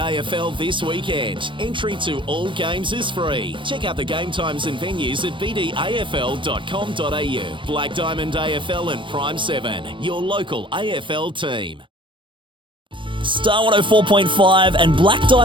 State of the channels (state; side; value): late; left; 0.24 ms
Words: this weekend. Entry to all games is free. Check out the game times and venues at bdafl.com.au. Black Diamond AFL and Prime 7, your local AFL team. Star 104.5 and Black